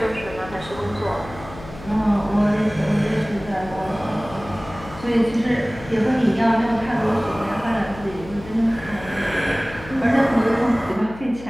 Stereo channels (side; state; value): left; noise; hum, 16 dB below the sound